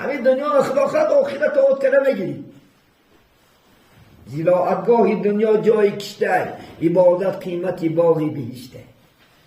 دنیا رو خدا خواهد آخرت آت کنه میگیریم زیراعتگاهی دنیا جای کشته عبادت قیمتی باقی بهشته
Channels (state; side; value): identical; both; correlation 1.00